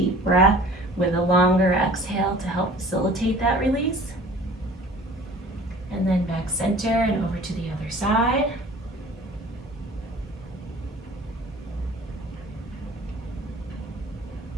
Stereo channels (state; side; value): normal; both; correlation 0.47